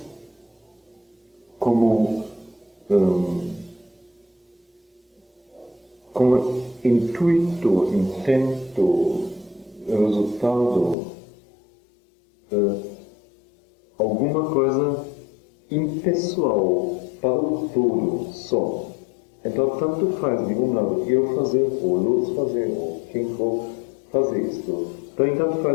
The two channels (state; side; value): drops out; right; at 11.0 s